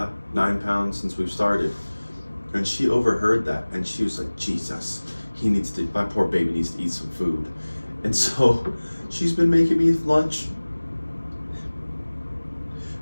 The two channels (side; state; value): both; inverted; correlation -1.00